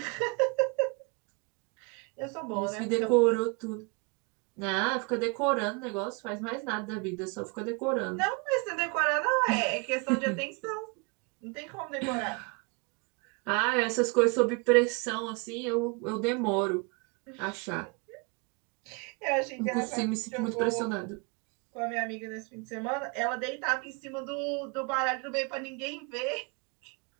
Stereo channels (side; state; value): left; quieter; 30.9 dB